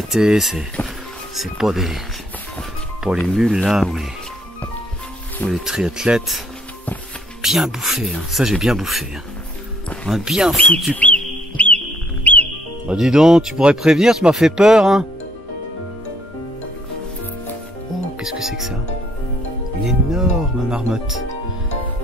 c'est pas les mules là ou les triathlètes. Bien bouffé, hein. Ça j'ai bien bouffé. Hein. On a bien foutu. Bah dis donc, tu pourrais prévenir, tu m'as fait peur, hein. Oh, qu'est-ce que c'est que ça? Une énorme marmotte.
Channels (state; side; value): normal; both; correlation 0.66